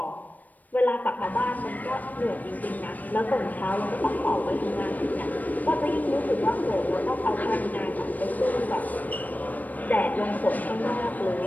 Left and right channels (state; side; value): late; right; 0.081 ms